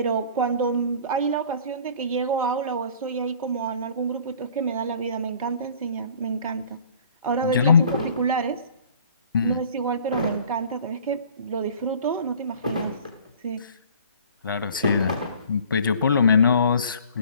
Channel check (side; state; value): both; inverted; correlation -0.50